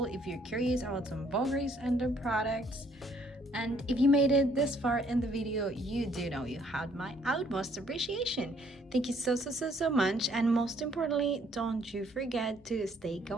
If you're curious about some Vograce and their products, And if you made it this far in the video, you do know you had my utmost appreciation. Thank you so much, and most importantly, don't you forget to stay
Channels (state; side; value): normal; both; correlation 0.64